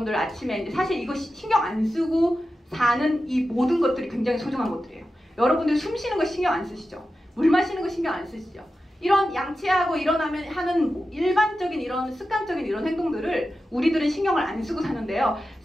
아침에 이제 사실 이거 신경 안 쓰고 사는 이 모든 것들이 굉장히 소중한 것들이에요. 여러분들 숨 쉬는 거 신경 안 쓰시죠? 물 마시는 거 신경 안 쓰시죠? 이런 양치하고 일어나면 하는 일반적인 이런 습관적인 이런 행동들을 우리들은 신경을 안 쓰고 사는데요.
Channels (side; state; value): both; normal; correlation 0.92